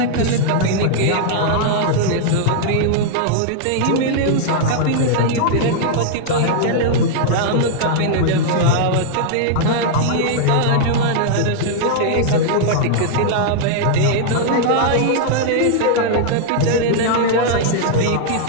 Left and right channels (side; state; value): both; different; correlation -0.01